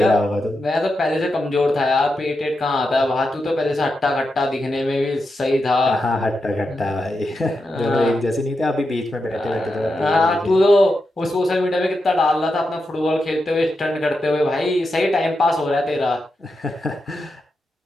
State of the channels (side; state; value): both; normal; correlation 0.87